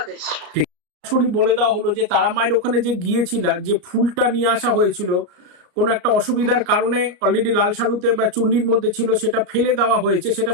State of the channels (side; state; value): left; late; 34 ms